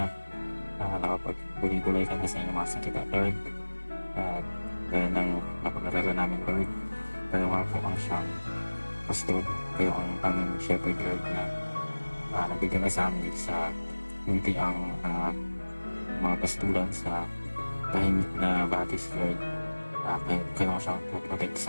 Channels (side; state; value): both; inverted; correlation -1.00